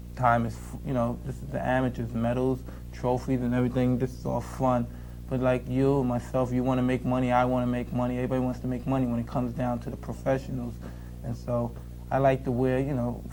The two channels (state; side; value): identical; both; correlation 1.00